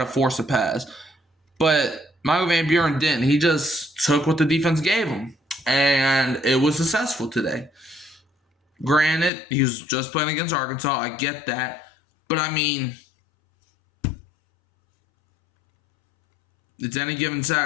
force a pass. But Michael Van Buren didn't. He just took what the defense gave him, and it was successful today. Granted, he was just playing against Arkansas. I get that. But, I mean, it's any given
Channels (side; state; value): right; drops out; at 9.3 s